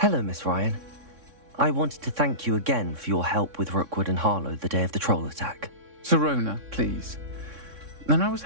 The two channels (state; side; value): late; left; 3.6 ms